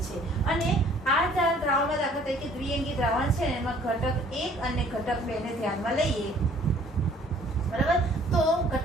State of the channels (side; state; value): both; normal; correlation 0.56